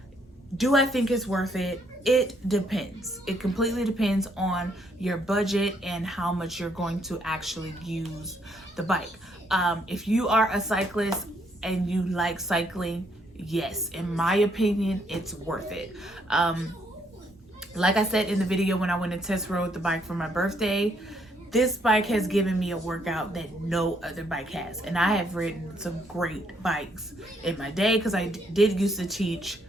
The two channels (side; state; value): both; normal; correlation 0.71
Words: Do I think it's worth it? It depends. It completely depends on your budget and how much you're going to actually use the bike. If you are a cyclist and you like cycling, yes, in my opinion, it's worth it. Like I said in the video when I went and test rode the bike for my birthday, this bike has given me a workout that no other bike has. And I have ridden some great bikes in my day because I did used to teach